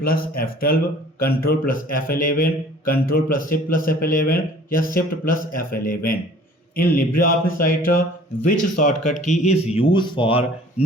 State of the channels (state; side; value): normal; both; correlation 0.50